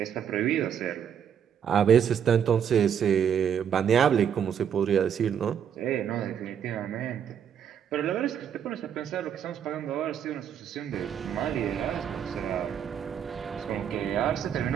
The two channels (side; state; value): left; quieter; 8.4 dB